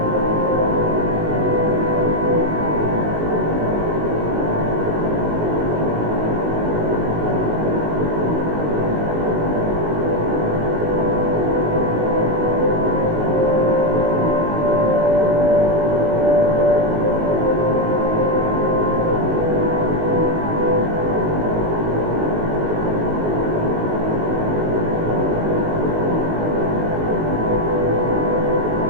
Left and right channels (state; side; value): late; left; 19 ms